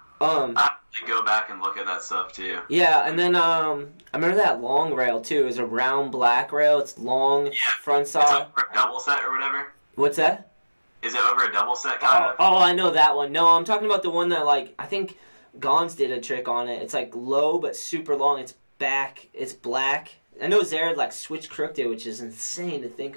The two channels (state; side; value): inverted; both; correlation -1.00